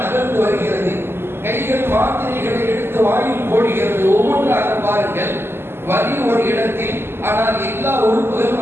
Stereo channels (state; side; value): late; left; 0.11 ms